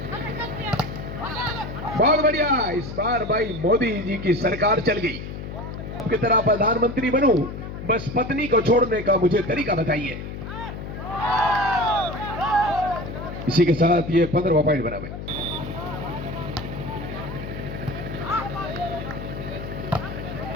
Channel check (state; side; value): noise; left; hum, 8 dB below the sound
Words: बहुत बढ़िया, इस बार भाई मोदी जी की सरकार चल गई। की तरह प्रधानमंत्री बनूं, बस पत्नी को छोड़ने का मुझे तरीका बताइए। इसी के साथ ये 15वां पॉइंट बना हुआ।